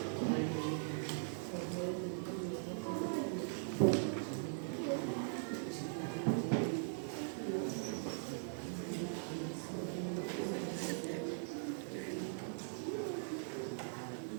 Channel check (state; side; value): silent; left; digital silence